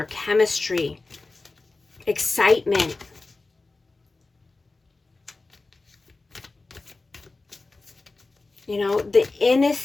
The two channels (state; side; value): quieter; right; 3.5 dB